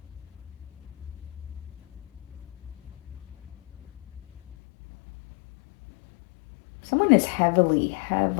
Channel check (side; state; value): right; drops out; at 4.5 s